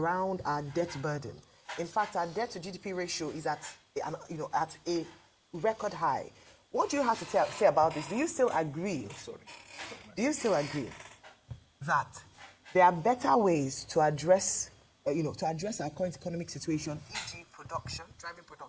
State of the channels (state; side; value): identical; both; correlation 1.00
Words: our debt burden. In fact, our debt to GDP ratio is at a record high. What do you have to say about this? Do you still agree? Do you still agree that there are better ways to address our current economic situation, e.g. driving